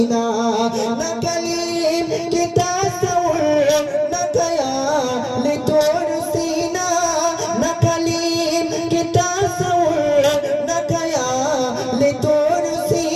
ना कलीम के तासव्वुर ना ख्याल तोर सीना, ना कलीम के तासव्वुर ना ख्याल तोर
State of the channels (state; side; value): identical; both; correlation 1.00